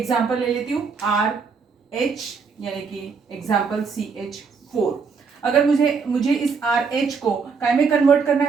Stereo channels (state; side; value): quieter; left; 5.3 dB